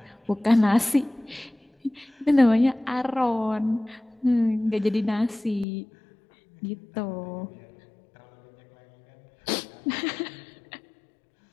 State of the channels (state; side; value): drops out; right; at 5.7 s